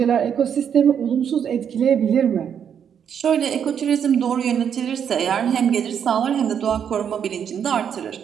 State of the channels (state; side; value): quieter; left; 8.1 dB